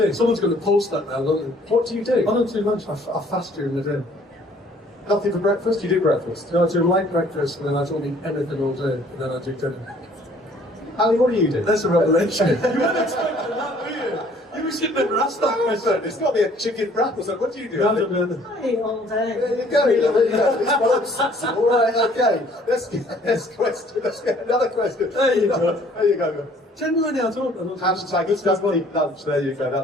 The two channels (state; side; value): normal; both; correlation 0.58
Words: Someone's going to post that now, don't they? What do you do? I don't do lunch. I fast during the day. Nothing for breakfast? You do breakfast? No, I do light breakfast, and then I don't eat anything all day, and then I do dinner. Ali, what do you do? That's a revelation. You weren't expecting that, were you? You should never ask that question. It's got to be a chicken wrap or something. What do you do? No, I don't do anything. I eat all day. There you go. There you go. It's well obsessive. All right, okay. Let's get another question. There you go. There you go. Genuinely, I don't. Hashtag it's just eat lunch. There you go.